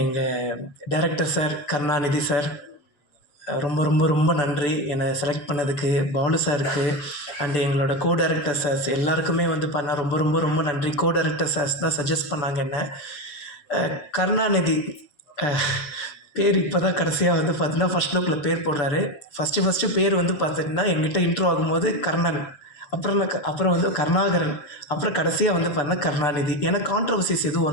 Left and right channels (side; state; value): right; late; 6.9 ms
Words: எங்கள் டைரக்டர் சார் கருணாநிதி சார், ரொம்ப ரொம்ப ரொம்ப நன்றி என்னை செலக்ட் பண்ணதுக்கு. பாலு சாருக்கு அண்டு எங்களோட கோ டைரக்டர் சார்ஸ் எல்லாருக்குமே பண்ணால் ரொம்ப ரொம்ப ரொம்ப நன்றி. கோ டைரக்டர் சார்ஸ் தான் சஜஸ்ட் பண்ணாங்க என்ன. கருணாநிதி பேர் இப்போ தான் கடைசியாக பார்த்தீங்கன்னா ஃபஸ்ட் லுக்கில் பேர் போடுறாரு. ஃபஸ்ட்டு பேர் பார்த்திங்கன்னா எங்கிட்ட இன்ட்ரோ ஆகும்போது கர்ணன், அப்புறம் கருணாகரன், அப்புறம் கடைசியாக பார்த்தீங்கன்னா கருணாநிதி. ஏன்னா கான்ட்ரவர்சிஸ் எதுவும்